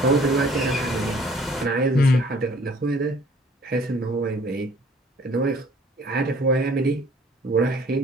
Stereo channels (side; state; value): both; normal; correlation 0.55